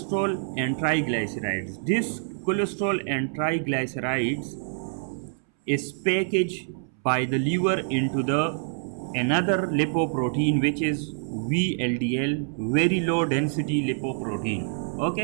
and triglycerides. This cholesterol and triglycerides is packaged by the liver into the another lipoprotein, which is VLDL, very low density lipoprotein.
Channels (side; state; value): left; silent; 61 dB below the other